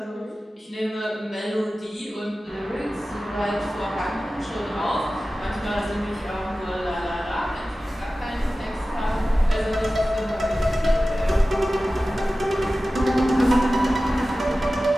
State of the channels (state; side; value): normal; both; correlation 0.96